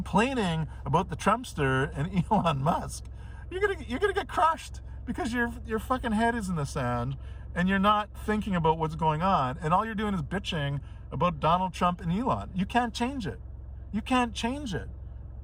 about the Trumpster and Elon Musk, you're gonna get crushed because your fucking head is in the sand and you're not thinking about what's going on, and all you're doing is bitching about Donald Trump and Elon. You can't change it. You can't change it.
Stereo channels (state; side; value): identical; both; correlation 1.00